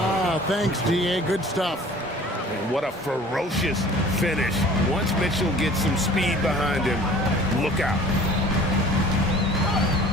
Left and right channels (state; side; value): normal; both; correlation 0.47